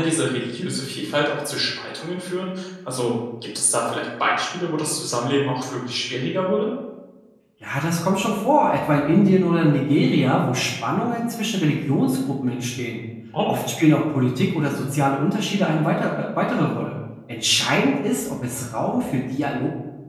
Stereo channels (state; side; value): identical; both; correlation 1.00